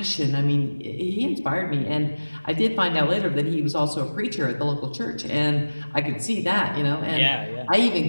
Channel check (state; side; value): inverted; both; correlation -1.00